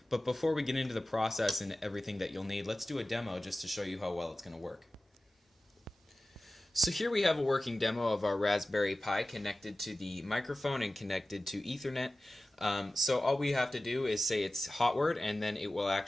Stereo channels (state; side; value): normal; both; correlation 0.95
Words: But before we get into the process and everything that you'll need, let's do a demo just to show you how well it's going to work. So here we have a working demo of our Raspberry Pi connected to the microphone and connected to Ethernet. So all we have to do is say it's hot word, and then it will